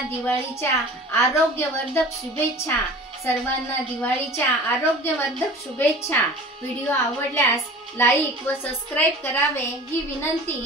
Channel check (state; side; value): normal; both; correlation 0.41